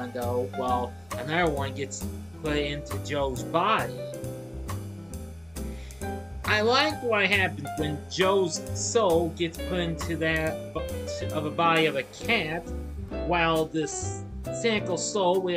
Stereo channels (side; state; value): left; noise; hum, 28 dB below the sound